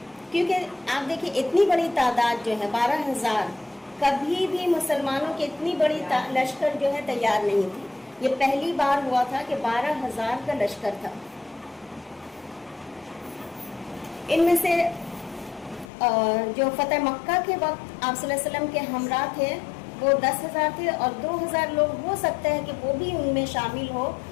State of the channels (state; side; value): drops out; right; at 15.9 s